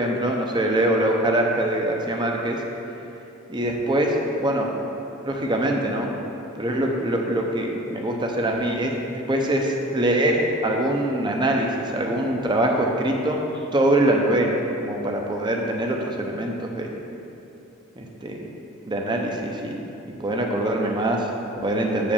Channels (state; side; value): normal; both; correlation 0.44